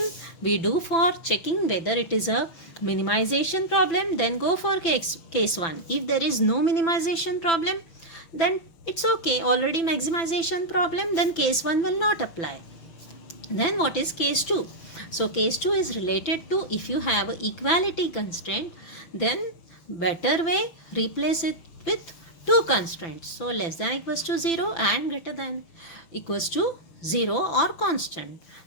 we do for checking whether it is a minimization problem, then go for case 1. If there is no minimization problem, then it's okay, already maximization problem, then case 1 will not apply. Then what is case 2? So case 2 is related to if you have an equality constraint, then better way, replace it with two constraints. So less than equals to 0 and greater than equals to 0 or constant.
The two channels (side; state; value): right; late; 6.0 ms